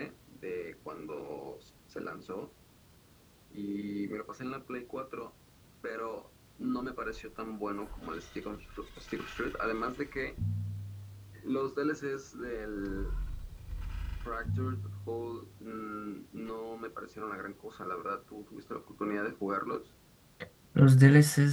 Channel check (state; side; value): identical; both; correlation 1.00